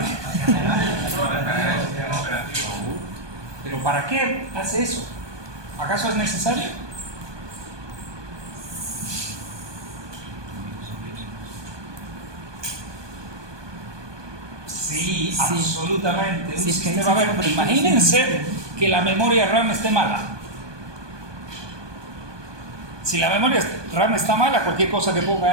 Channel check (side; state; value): left; late; 1.2 ms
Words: ¿Pero para qué hace eso? ¿Acaso es necesario? Sí, absolutamente. Un Sí, es que ahí sistema, sí a ver, que- imagínense que la memoria RAM esté mala. Si la memoria RAM está mala, cualquier cosa que ponga